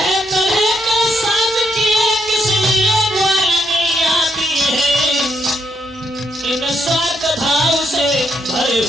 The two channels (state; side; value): normal; both; correlation 0.76